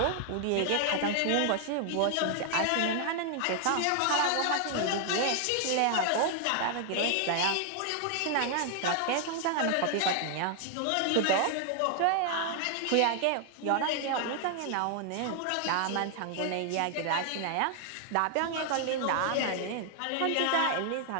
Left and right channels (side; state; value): both; different; correlation 0.00